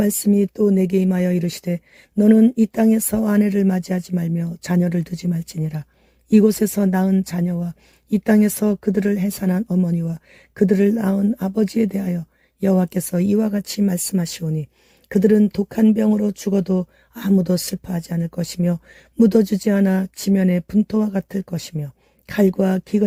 또 내게 임하여 이르시되 너는 이 땅에서 아내를 맞이하지 말며 자녀를 두지 말지니라. 이곳에서 낳은 자녀와 이 땅에서 그들을 해산한 어머니와 그들을 낳은 아버지에 대하여 여호와께서 이와 같이 말씀하시오니 그들은 독한 병으로 죽어도 아무도 슬퍼하지 않을 것이며 묻어주지 않아 지면의 분토와 같을 것이며 칼과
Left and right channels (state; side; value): identical; both; correlation 1.00